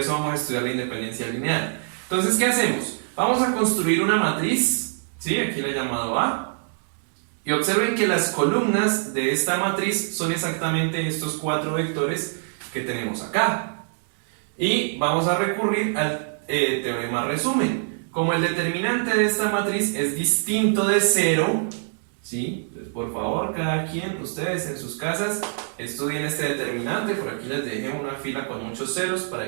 vamos a estudiar la independencia lineal. Entonces, ¿qué hacemos? Vamos a construir una matriz, ¿sí? Aquí la he llamado A. Y observen que las columnas de esta matriz son exactamente estos 4 vectores que tenemos acá. Y vamos a recurrir al teorema resumen. Como el determinante de esta matriz es distinto de 0, ¿sí? Por favor, cada quien, ustedes en sus casas, estudien este determinante. Por aquí les dejé una fila con muchos ceros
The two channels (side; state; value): left; silent; digital silence